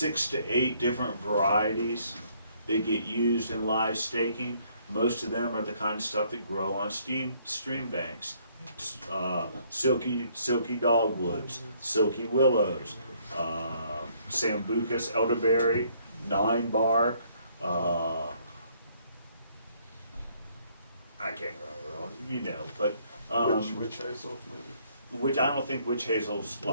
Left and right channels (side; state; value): both; inverted; correlation -0.66